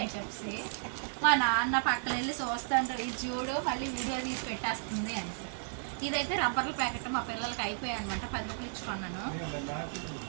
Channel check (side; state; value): left; silent; digital silence